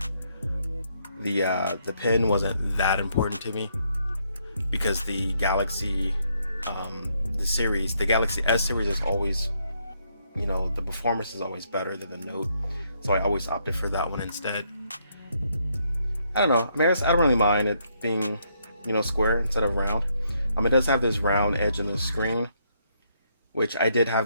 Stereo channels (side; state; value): both; inverted; correlation -0.73